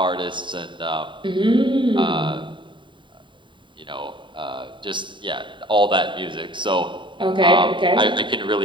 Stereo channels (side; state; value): left; late; 0.23 ms